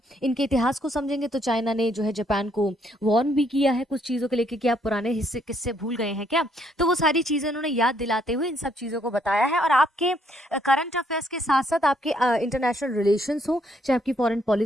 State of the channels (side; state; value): both; normal; correlation 0.70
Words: इनके इतिहास को समझेंगे तो चाइना ने जो है जापान को वॉर्न भी किया है कुछ चीजों को लेकर कि आप पुराने हिस्से किससे भूल गए हैं क्या। तो वो सारी चीजें उन्होंने याद दिलाते हुए इन सब चीजों को बताया है। और आपके करंट अफेयर्स के साथ साथ आपके इंटरनेशनल रिलेशंस हो, चाहे आपकी फॉरेन